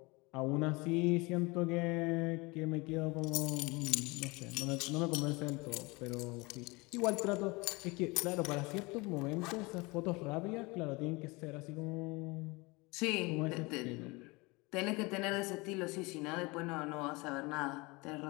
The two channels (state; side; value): quieter; right; 25.1 dB